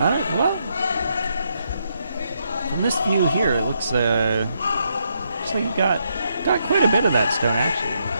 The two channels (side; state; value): both; inverted; correlation -0.78